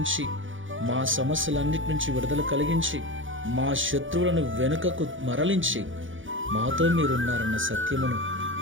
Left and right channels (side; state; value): left; late; 0.57 ms